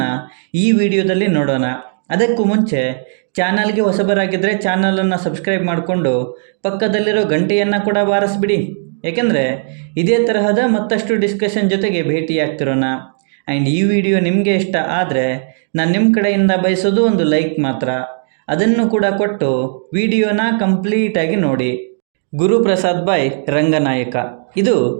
ಈ ವಿಡಿಯೋದಲ್ಲಿ ನೋಡೋಣ. ಅದಕ್ಕೂ ಮುಂಚೆ ಚಾನಲ್ಗೆ ಹೊಸಬರಾಗಿದ್ದರೆ ಚಾನಲನ್ನು ಸಬ್ಸ್ಕ್ರೈಬ್ ಮಾಡಿಕೊಂಡು ಪಕ್ಕದಲ್ಲಿರೋ ಗಂಟೆಯನ್ನು ಕೂಡ ಬಾರಿಸ್ಬಿಡಿ. ಏಕೆಂದರೆ ಇದೇ ತರಹದ ಮತ್ತಷ್ಟು ಡಿಸ್ಕಷನ್ ಜೊತೆಗೆ ಭೇಟಿಯಾಗ್ತಿರೋಣ. ಆ್ಯಂಡ್ ಈ ವಿಡಿಯೋ ನಿಮಗೆ ಇಷ್ಟ ಆದರೆ ನಾನು ನಿಮ್ಮ ಕಡೆಯಿಂದ ಬಯಸೋದು ಒಂದು ಲೈಕ್ ಮಾತ್ರ. ಅದನ್ನು ಕೂಡ ಕೊಟ್ಟು ವಿಡಿಯೋನ ಕಂಪ್ಲೀಟಾಗಿ ನೋಡಿ. ಗುರುಪ್ರಸಾದ್ ಬಾಯ್ ರಂಗನಾಯಕ ಇದು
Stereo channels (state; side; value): silent; left; digital silence